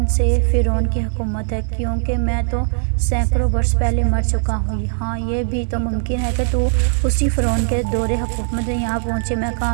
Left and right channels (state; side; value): silent; left; digital silence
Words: سے فرعون کی حکومت ہے، کیونکہ میں تو سینکڑوں برس پہلے مر چکا ہوں۔ ہاں، یہ بھی تو ممکن ہے کہ تو اسی فرعون کے دور حکومت میں یہاں پہنچے میں